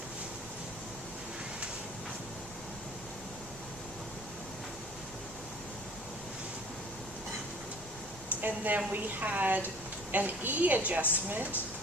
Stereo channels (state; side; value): noise; left; rumble, 19 dB below the sound